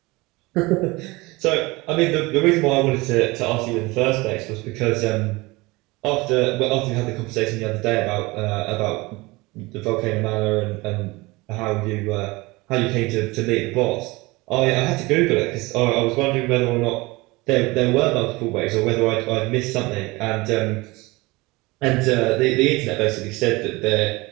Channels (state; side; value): quieter; left; 22.8 dB